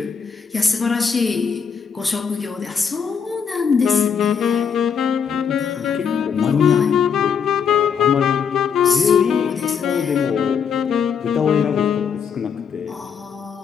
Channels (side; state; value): right; quieter; 6.8 dB